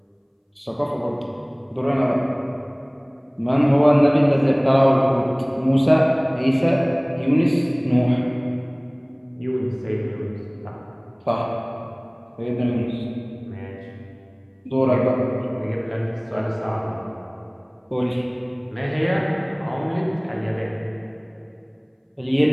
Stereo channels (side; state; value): both; identical; correlation 1.00